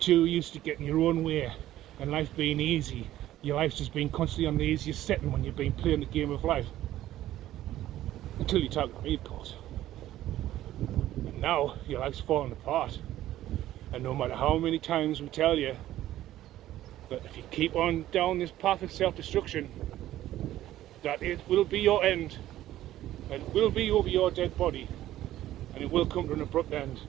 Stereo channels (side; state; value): left; quieter; 13.8 dB